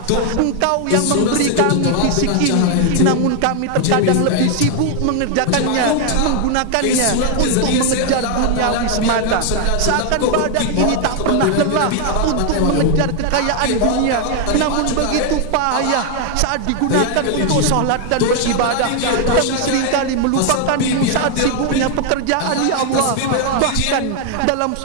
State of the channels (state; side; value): different; both; correlation 0.00